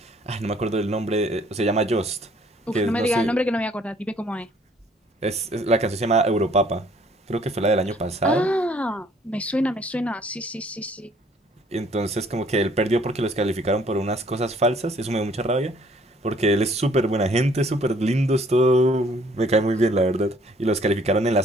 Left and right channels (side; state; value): both; normal; correlation 0.60